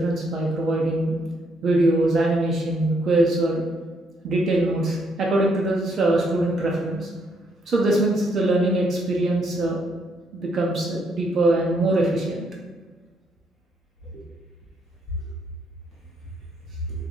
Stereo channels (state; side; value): normal; both; correlation 0.73